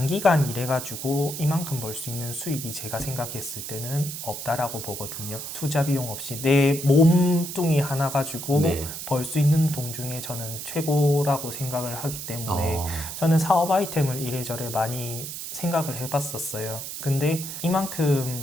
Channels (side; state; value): right; noise; hiss, 7 dB below the sound